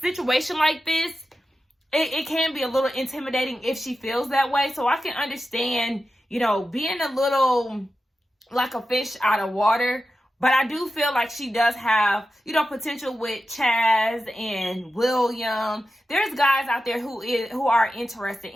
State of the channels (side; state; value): both; normal; correlation 0.92